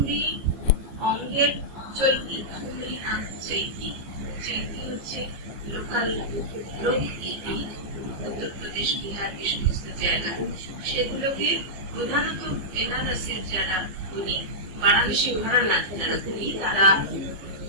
অঙ্গের চৈতি, ঠুমরি চৈতি। চৈতি হচ্ছে লোকাল লোকগীতি, উত্তরপ্রদেশ, বিহার, এই সমস্ত জায়গায় সেগুলোকে প্রধানত বেনারসের যারা উনি বারাণসী ঘরানা যারা উনি, তারা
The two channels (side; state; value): left; late; 15 ms